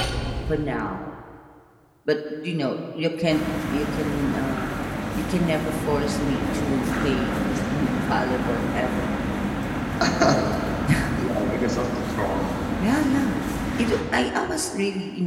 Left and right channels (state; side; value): identical; both; correlation 1.00